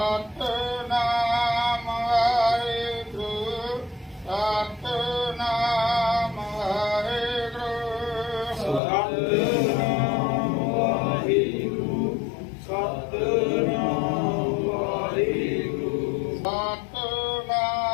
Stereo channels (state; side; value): drops out; right; at 8.8 s